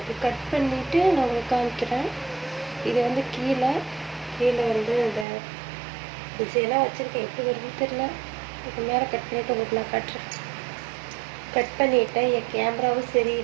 கட் பண்ணிவிட்டு நான் உங்களுக்கு காமிக்கிறேன். இது கீழே இந்த டிசைனாக வச்சுருக்கேன், எப்படி வருதுன்னு தெரில. இது மேலே கட் பண்ணிவிட்டு உங்களுக்கு நான் காட்டுறேன். கட் பண்ணிவிட்டேன். என் கேமராவும்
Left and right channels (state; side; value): drops out; left; at 5.2 s